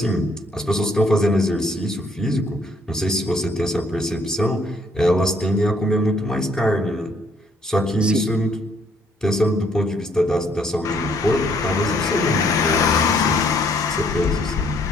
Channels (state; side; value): normal; both; correlation 0.66